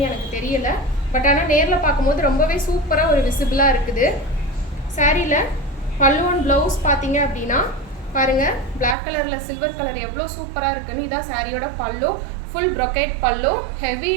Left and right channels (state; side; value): drops out; left; at 9.0 s